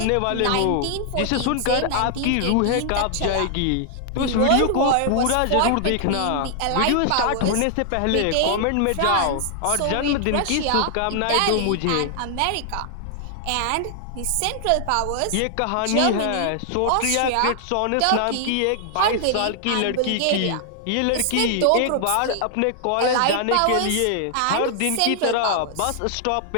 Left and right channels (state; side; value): different; both; correlation 0.00